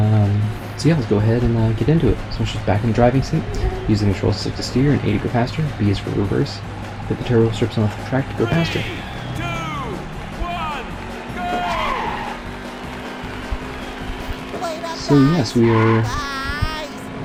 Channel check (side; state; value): both; identical; correlation 1.00